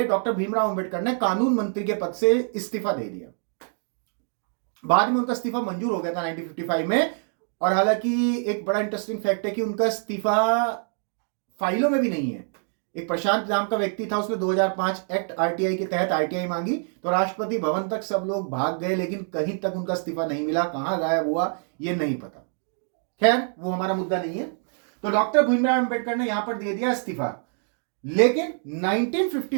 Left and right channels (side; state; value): left; silent; 61 dB below the other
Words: डॉक्टर भीमराव अंबेडकर ने कानून मंत्री के पद से इस्तीफा दे दिया। बाद में उनका इस्तीफा मंजूर हो गया था 1955 में। और हालांकि एक बड़ा इंटरेस्टिंग फैक्ट है कि उनका इस्तीफा फाइलों में भी नहीं है। एक प्रशांत नाम का व्यक्ति था, उसने 2005 एक्ट आरटीआई के तहत आरटीआई मांगी तो राष्ट्रपति भवन तक सब लोग भाग गए, लेकिन कहीं तक उनका इस्तीफा नहीं मिला, कहां गायब हुआ ये नहीं पता। खैर वो हमारा मुद्दा नहीं है। तो डॉक्टर भीमराव अंबेडकर ने यहां पर दे दिया इस्तीफा। लेकिन